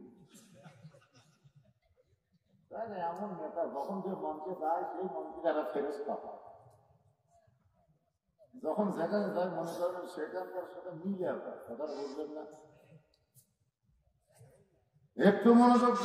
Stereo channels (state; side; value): identical; both; correlation 1.00